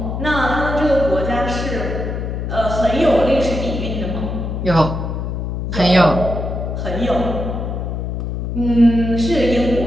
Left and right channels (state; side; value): noise; left; hum, 3 dB below the sound